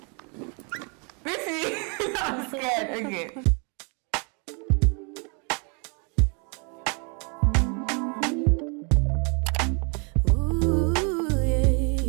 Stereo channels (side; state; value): left; quieter; 35.4 dB